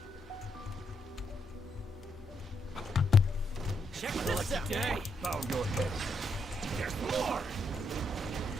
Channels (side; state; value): both; normal; correlation 0.78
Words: Check this out! Day. Bow your head. There's more!